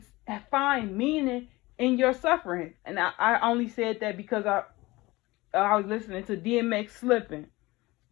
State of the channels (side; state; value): right; quieter; 20.8 dB